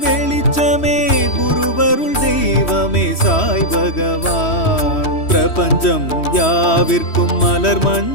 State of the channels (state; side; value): late; right; 3.1 ms